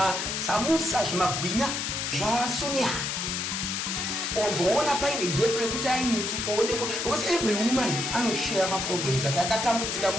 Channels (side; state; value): left; noise; hiss, 2 dB below the sound